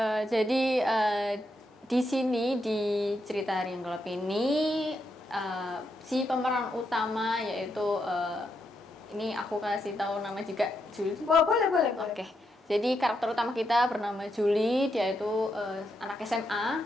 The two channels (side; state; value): both; normal; correlation 0.81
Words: Jadi di sini di cerita Hari yang Gelap ini si pemeran utama yaitu ini aku kasih tahu nama juga Julie. Boleh. Oke. Jadi karakter utama kita bernama Julie, dia itu anak SMA